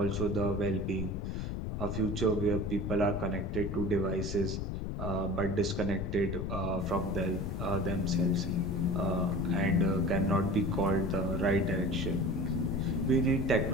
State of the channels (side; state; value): left; noise; rumble, 3 dB below the sound